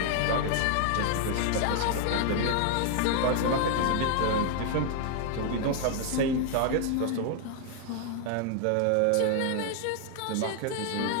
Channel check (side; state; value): both; different; correlation 0.00